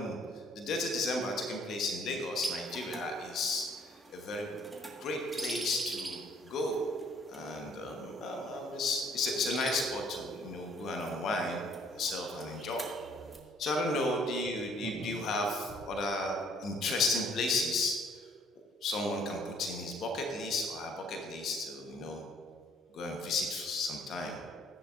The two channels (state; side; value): normal; both; correlation 0.61